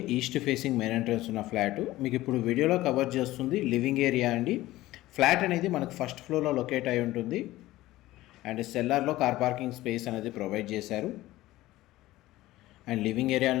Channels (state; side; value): quieter; right; 16.8 dB